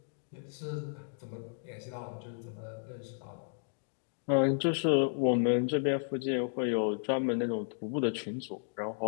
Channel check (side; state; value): right; silent; digital silence